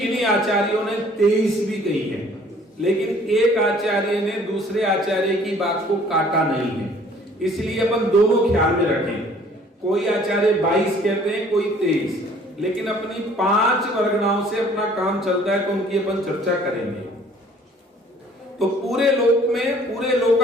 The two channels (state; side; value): normal; both; correlation 0.55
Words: आचार्यों ने 23 भी कही है, लेकिन एक आचार्य ने दूसरे आचार्य की बात को काटा नहीं है। इसलिए अपन दोनों ख्याल में रखें। कोई आचार्य 22 कहते हैं, कोई 23, लेकिन अपनी 5 वर्गनाओं से अपना काम चलता है, तो उनकी अपन चर्चा करेंगे। तो पूरे लोक में, पूरे